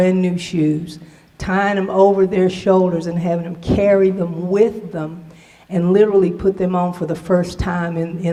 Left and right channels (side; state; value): both; identical; correlation 1.00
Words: new shoes, tying them over their shoulders and having them carry them with them, and literally put them on for the first time